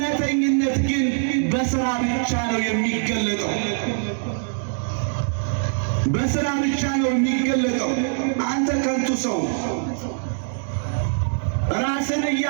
ግን በሥራ ብቻ ነው የሚገለጠው። በሥራ ብቻ ነው የሚገለጠው። አንተ ከንቱ ሰው ራስን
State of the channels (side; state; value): left; silent; digital silence